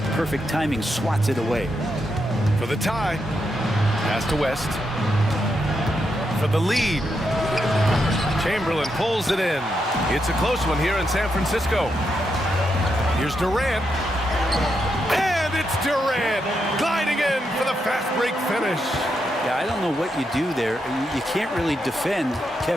perfect timing, swats it away. For the tie, pass to West. For the lead, Chamberlain pulls it in. It's a close one here in San Francisco. Here's Durant. And it's Durant gliding in for the fast break finish. Yeah, I don't know what you do there. You can't really defend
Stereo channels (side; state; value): both; normal; correlation 0.83